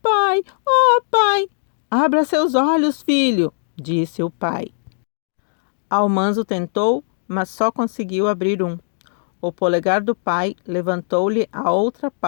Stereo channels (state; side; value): silent; right; digital silence